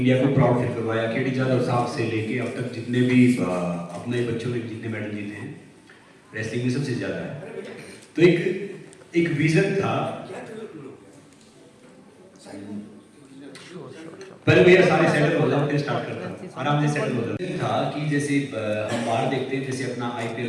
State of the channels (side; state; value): both; identical; correlation 1.00